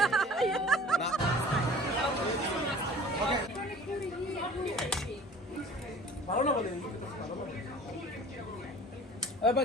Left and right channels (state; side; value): normal; both; correlation 0.46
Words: ভালো না বলে